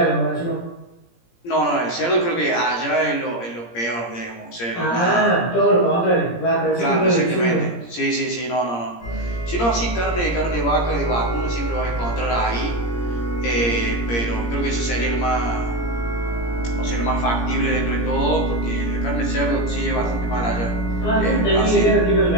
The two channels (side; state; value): right; late; 17 ms